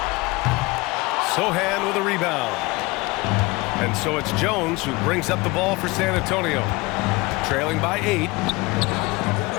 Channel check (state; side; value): quieter; right; 23.6 dB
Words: Sohan with a rebound. And so it's Jones who brings up the ball for San Antonio. Trailing by 8.